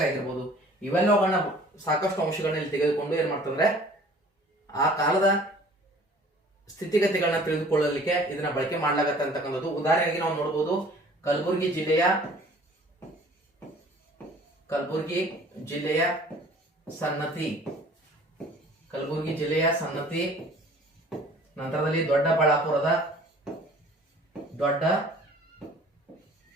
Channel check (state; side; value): normal; both; correlation 0.51